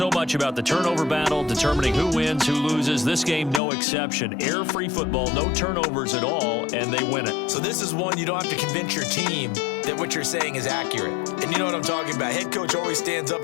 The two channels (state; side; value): drops out; right; at 3.6 s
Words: much about the turnover battle, determining who wins, who loses. This game, no exception. Air-free football, no turnovers at all, and they win it. So this is one you don't have to convince your team that what you're saying is accurate. And you know what I'm talking about. Head coach always stands up